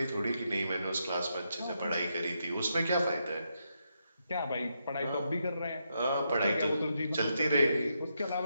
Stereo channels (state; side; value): inverted; both; correlation -0.81